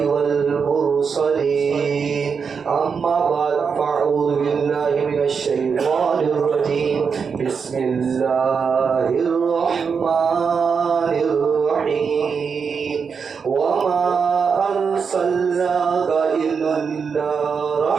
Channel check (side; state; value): left; quieter; 5.9 dB